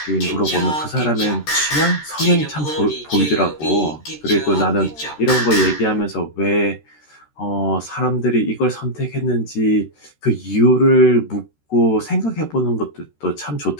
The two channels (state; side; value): late; right; 13 ms